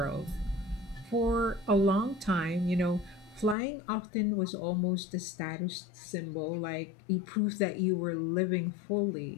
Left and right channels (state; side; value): drops out; right; at 3.6 s